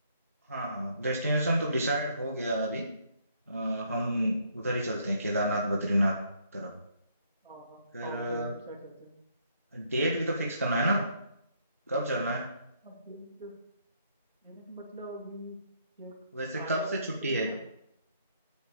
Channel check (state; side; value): inverted; both; correlation -0.69